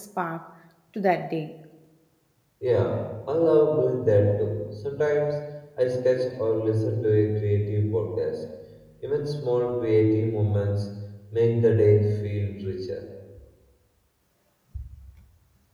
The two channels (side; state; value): both; identical; correlation 1.00